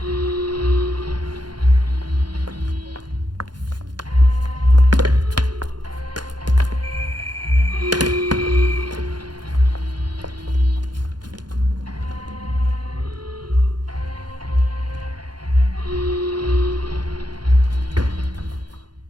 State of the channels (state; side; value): late; left; 0.71 ms